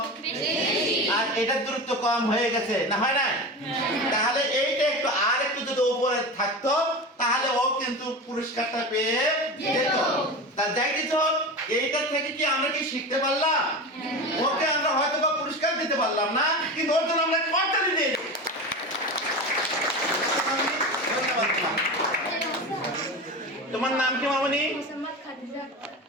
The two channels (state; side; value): normal; both; correlation 0.26